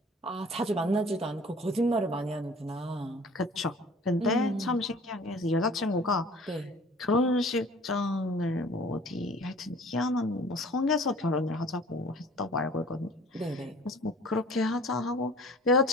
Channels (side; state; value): both; normal; correlation 0.48